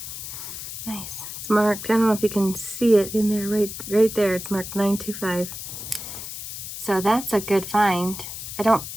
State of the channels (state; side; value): noise; left; hiss, 9 dB below the sound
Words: nice. It's marked. I don't know if you can see it in there, right there. It's marked 925. So that's a good find.